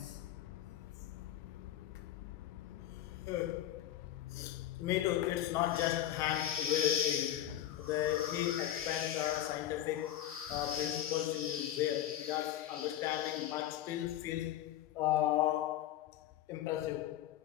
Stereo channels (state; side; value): quieter; right; 12.1 dB